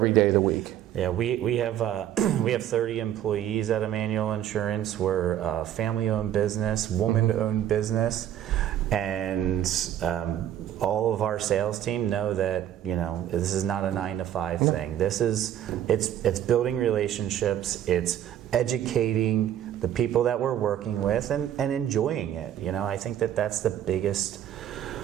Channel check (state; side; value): quieter; left; 11.1 dB